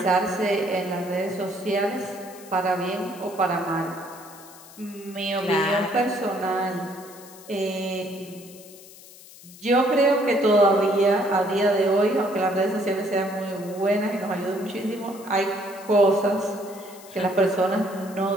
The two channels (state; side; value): noise; left; hiss, 20 dB below the sound